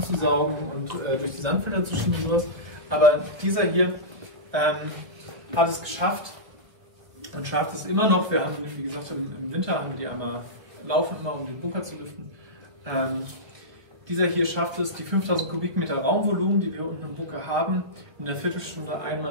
und durch die Sandfilter zu schieben und sowas. Aber dieser hier hat es geschafft und schafft es immer noch. Wir haben, wie gesagt, im Winter haben wir die einmal laufen, immer um den Bunker zu lüften. Dieser hier schafft es, die 5000 Kubikmeter Raumvolumen, die wir unten im Bunker haben, in einer Viertelstunde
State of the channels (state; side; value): late; left; 1.3 ms